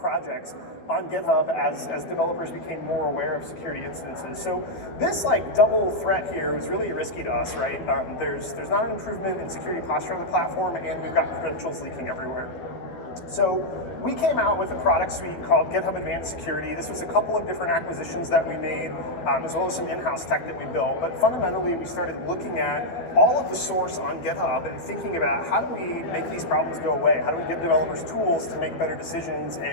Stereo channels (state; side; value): late; right; 12 ms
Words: on GitHub as developers became more aware of security incidences. So this double threat here was really risky to us, right? There's not an improvement in security posture on the platform, and we've got credentials leaking everywhere. So we came out with a product suite called GitHub Advanced Security. This was a couple of different acquisitions that we made, as well as some in-house tech that we built. But fundamentally, we started looking at all of the source on GitHub and thinking about how do we make these problems go away? How do we give developers tools to make better decisions